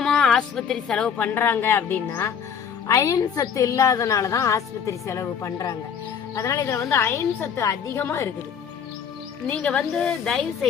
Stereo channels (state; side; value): quieter; right; 7.4 dB